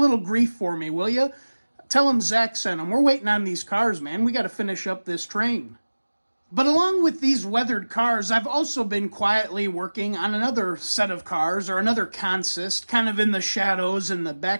grief for me, will you? Tell him Zach sent him. We're waiting on these cars, man. We got to finish up this train. But along with these weathered cars, I've also been quietly working on another set of cars, or another consist, kind of in the shadows in the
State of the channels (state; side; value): inverted; both; correlation -1.00